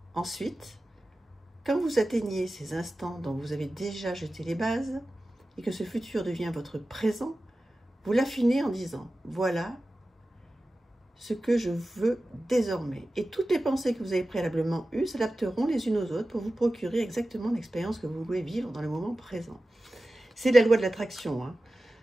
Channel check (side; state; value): both; normal; correlation 0.95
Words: Ensuite, quand vous atteignez ces instants dont vous avez déjà jeté les bases, et que ce futur devient votre présent, vous l'affinez en disant « Voilà ce que je veux désormais. » Et toutes les pensées que vous avez préalablement eues s'adapteront les unes aux autres pour vous procurer exactement l'expérience que vous voulez vivre dans le moment présent. C'est la loi de l'attraction. Hein.